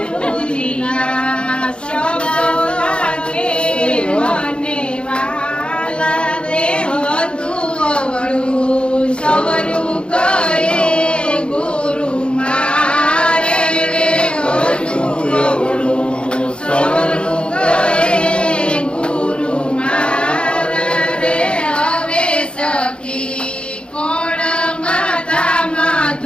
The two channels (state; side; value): late; right; 0.055 ms